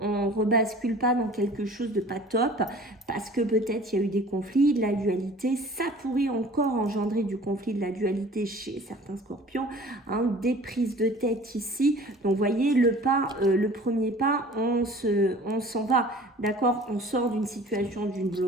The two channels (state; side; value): normal; both; correlation 0.46